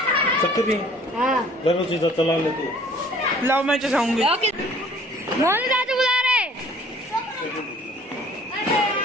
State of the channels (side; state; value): both; normal; correlation 0.54